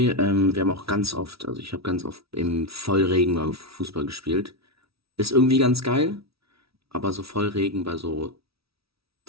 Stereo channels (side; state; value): left; late; 0.76 ms